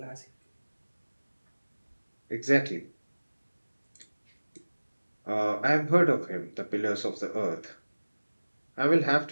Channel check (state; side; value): inverted; both; correlation -1.00